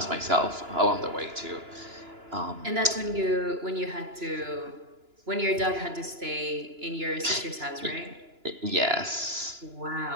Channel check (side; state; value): left; late; 2.9 ms